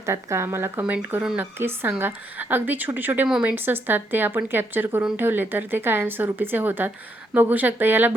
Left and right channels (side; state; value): both; normal; correlation 0.76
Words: का, मला कमेंट करून नक्कीच सांगा. अगदी छोटे छोटे मोमेंट्स असतात, ते आपण कॅप्चर करून ठेवले तर ते कायमस्वरूपीचे होतात. बघू शकता याला